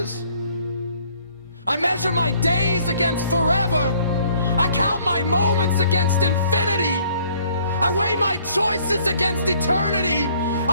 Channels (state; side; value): inverted; both; correlation -0.61